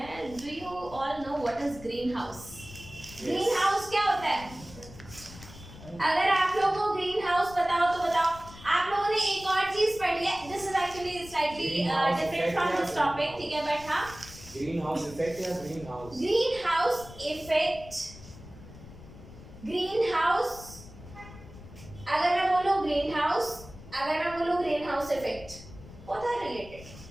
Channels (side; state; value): left; noise; rumble, 17 dB below the sound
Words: Do you all know what is green house? Green house क्या होता है? अगर आप लोगों को ग्रीन हाउस पता हो तो बताओ. आप लोगों ने एक और चीज पढ़ी है. This is actually slightly different from this topic. ठीक है. बट हाँ, ग्रीन हाउस इफेक्ट या greenhouse? Greenhouse effect. Greenhouse अगर मैं बोलूं ग्रीन हाउस, अगर मैं बोलूं greenhouse effect, both are related.